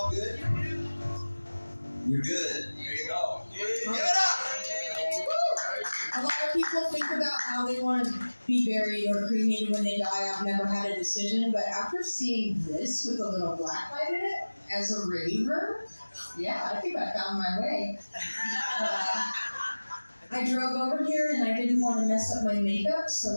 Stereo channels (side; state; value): both; inverted; correlation -1.00